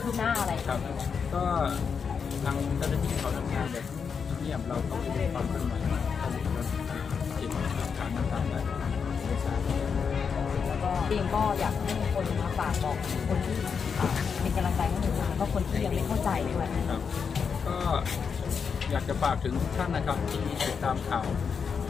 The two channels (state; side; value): quieter; right; 6.2 dB